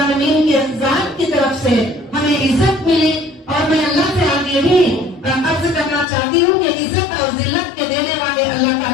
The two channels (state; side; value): drops out; right; at 6.1 s